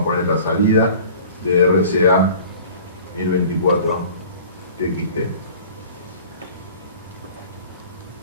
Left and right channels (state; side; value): inverted; both; correlation -0.45